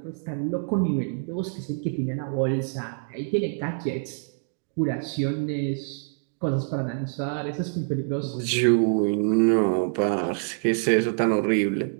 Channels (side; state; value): left; silent; 59 dB below the other